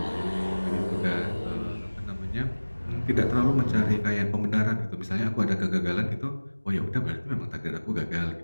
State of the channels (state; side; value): inverted; both; correlation -1.00